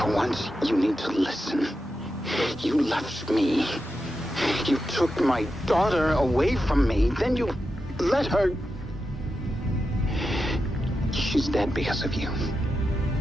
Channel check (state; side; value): normal; both; correlation 0.89